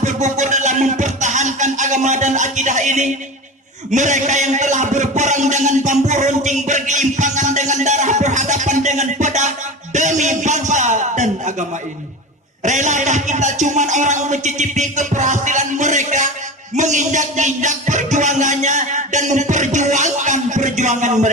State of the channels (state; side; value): normal; both; correlation 0.29